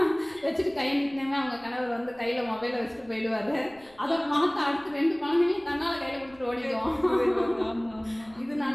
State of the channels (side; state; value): left; noise; rumble, 28 dB below the sound